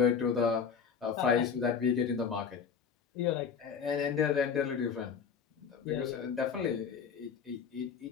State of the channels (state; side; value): quieter; right; 6.6 dB